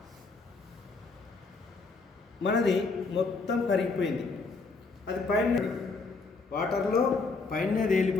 మనది మొత్తం కరిగిపోయింది. అది పైన వాటర్లో పైనే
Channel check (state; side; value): quieter; right; 4.0 dB